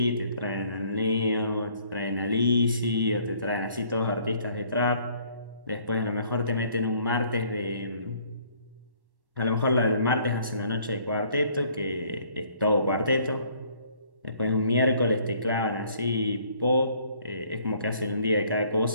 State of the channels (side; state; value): left; late; 1.1 ms